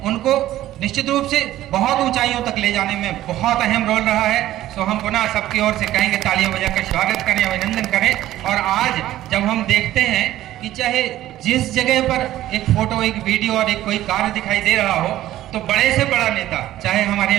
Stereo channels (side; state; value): left; quieter; 14.1 dB